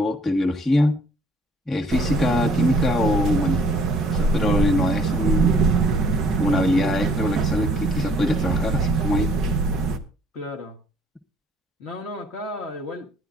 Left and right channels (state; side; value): normal; both; correlation 0.60